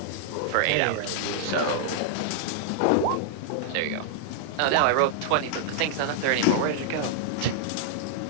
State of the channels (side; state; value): both; different; correlation -0.01